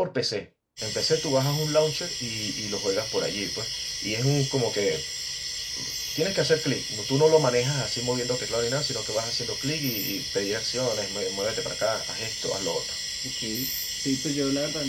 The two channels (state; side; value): identical; both; correlation 1.00